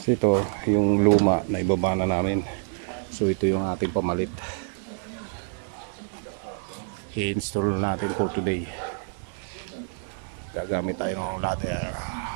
So ito yung luma na ibaba na namin. So ito yung ating pamalit. I-install natin for today. Gagamit tayo ng ladder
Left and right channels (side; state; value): left; silent; digital silence